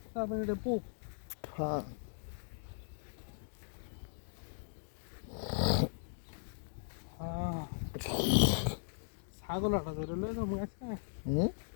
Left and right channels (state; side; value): silent; right; digital silence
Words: তারপরে এটা পূব। হ্যাঁ, হ্যাঁ, ছাগল আটা ধরে লয়ে যাবো আজকে। হুম।